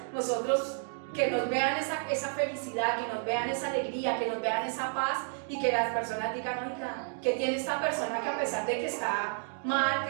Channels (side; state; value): left; silent; digital silence